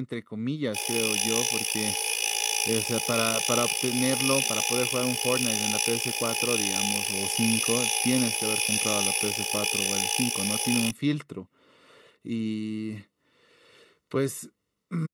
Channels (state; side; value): identical; both; correlation 1.00